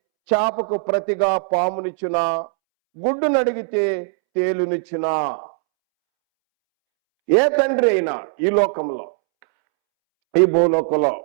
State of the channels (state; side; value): silent; left; 66 dB below the other